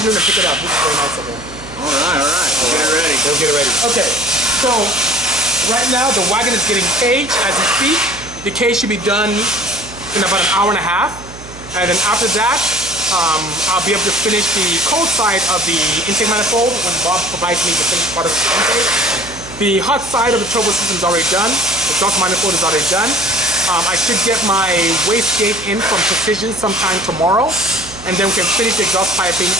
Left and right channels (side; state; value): right; noise; hum, 17 dB below the sound